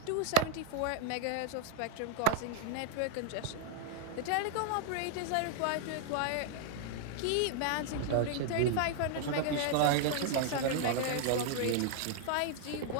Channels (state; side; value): different; both; correlation -0.01